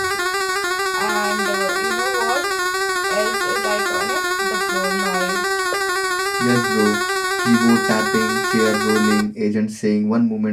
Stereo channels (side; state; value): both; identical; correlation 1.00